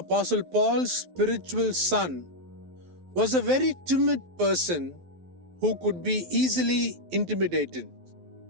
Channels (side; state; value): left; late; 12 ms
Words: Paul's spiritual son, was a very timid person who could be easily intimidated.